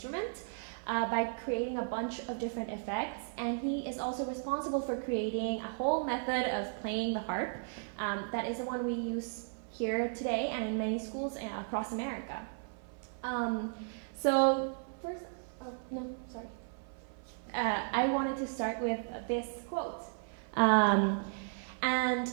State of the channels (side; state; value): left; silent; 54 dB below the other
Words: by creating a bunch of different effects. And he is also responsible for creating a whole method of playing the harp that is the one we use here today and in many schools across America. So first, no, sorry. I wanted to start with this quote. And